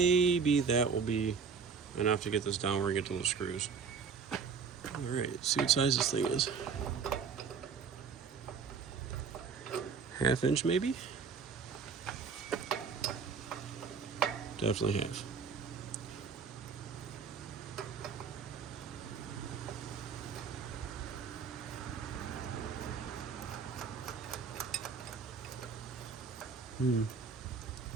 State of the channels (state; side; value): quieter; left; 5.8 dB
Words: that will be enough to get this down where I get to those screws. Alright, see what size this thing is. 1/2 inch maybe? Definitely half.